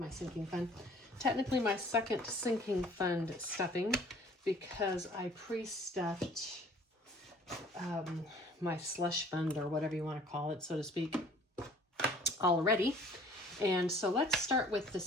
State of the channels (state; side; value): normal; both; correlation 0.53